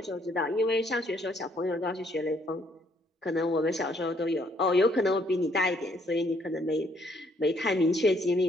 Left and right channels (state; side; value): normal; both; correlation 0.68